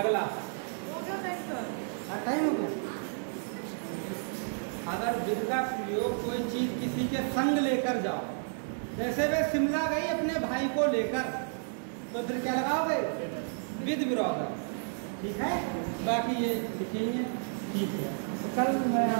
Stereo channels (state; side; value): silent; left; digital silence